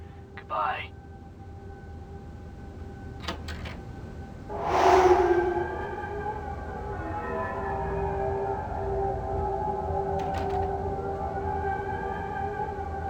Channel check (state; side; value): identical; both; correlation 1.00